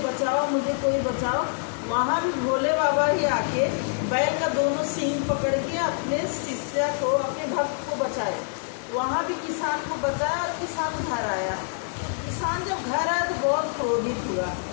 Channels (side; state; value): right; silent; 61 dB below the other